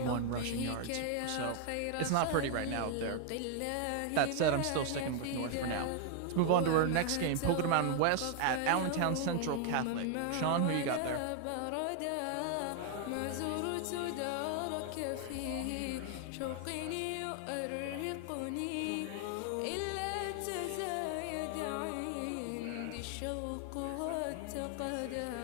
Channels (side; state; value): both; different; correlation 0.00